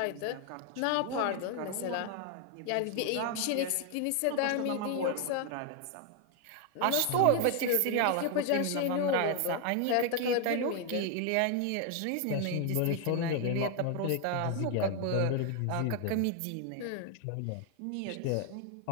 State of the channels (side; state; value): both; different; correlation 0.01